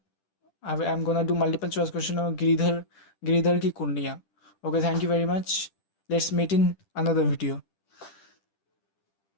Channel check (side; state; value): right; late; 10 ms